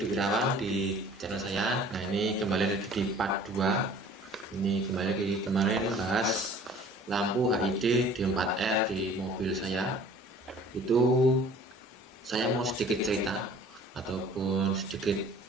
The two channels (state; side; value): normal; both; correlation 0.50